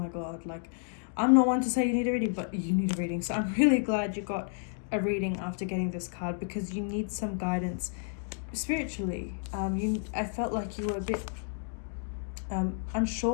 God, like, I'm not one to say you need a reading, but you need a reading. So I'm really glad you got a reading after getting this card, because you need some guidance spiritually. I felt like you were a bit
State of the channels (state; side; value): silent; right; digital silence